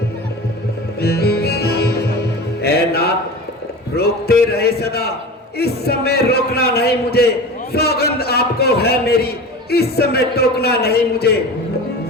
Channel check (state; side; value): normal; both; correlation 0.32